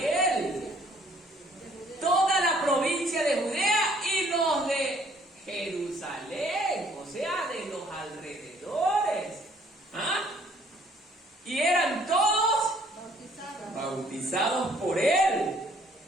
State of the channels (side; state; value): both; normal; correlation 0.61